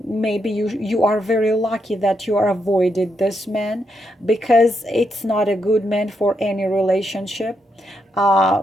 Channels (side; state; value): both; normal; correlation 0.80